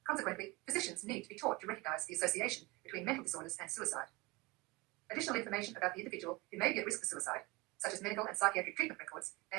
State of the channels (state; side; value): quieter; left; 22.8 dB